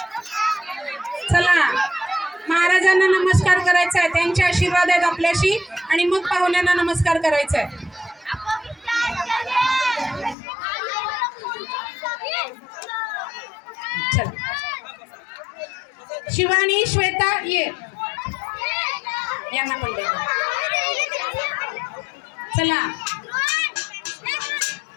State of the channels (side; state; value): right; drops out; at 10.4 s